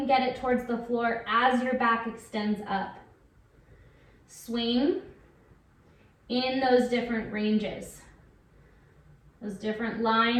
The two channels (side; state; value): both; identical; correlation 1.00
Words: get it towards the floor as your back extends up. Swing in those different ranges, those different